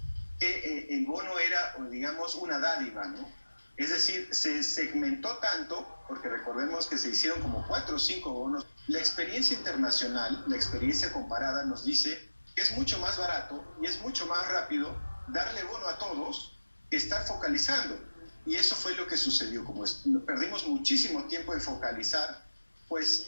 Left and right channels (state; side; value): inverted; both; correlation -1.00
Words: que el bono era, digamos, una dádiva, ¿no? Es decir, se segmentó tanto, porque recordemos que se hicieron como 4 o 5 bonos. La experiencia internacional, la experiencia comparada nos dice que es mucho más barato y es mucho más rápido darle bono a todos que estar focalizando. Y eso fue lo que sucedió. Como perdimos muchísimo tiempo en focalizar, pues